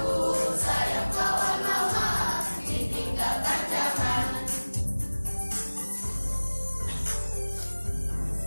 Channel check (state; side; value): inverted; both; correlation -1.00